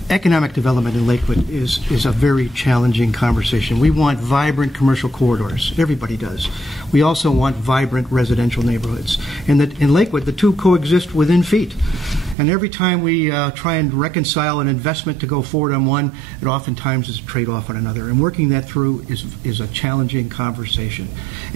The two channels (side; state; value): left; drops out; at 12.4 s